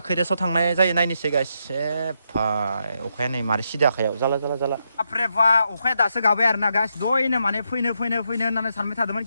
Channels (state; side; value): inverted; both; correlation -0.81